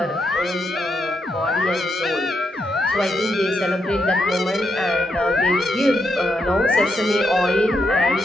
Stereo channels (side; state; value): both; normal; correlation 0.81